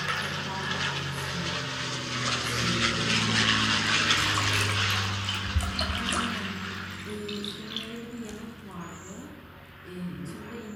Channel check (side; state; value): both; identical; correlation 1.00